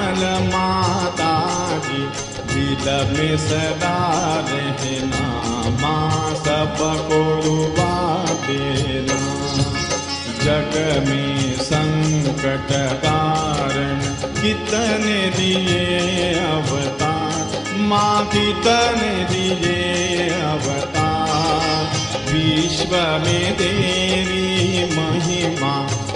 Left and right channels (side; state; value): both; identical; correlation 1.00